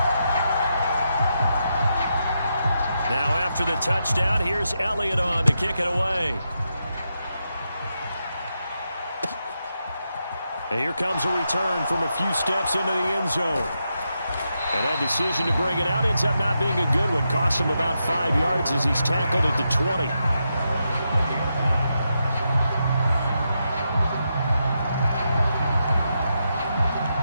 Now after the touchdown, here's Elliott on to kick it away. And here comes a return from a few steps into the end zone. And that decision to bring it out ends up not being a good one. Costs him about 5 yards as he's tackled at the 20.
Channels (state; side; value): inverted; both; correlation -0.85